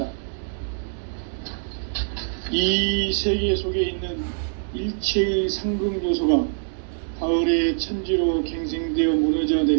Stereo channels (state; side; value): silent; left; digital silence